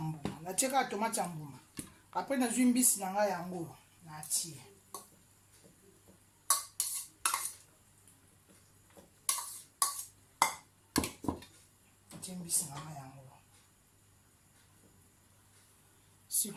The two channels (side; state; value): both; identical; correlation 1.00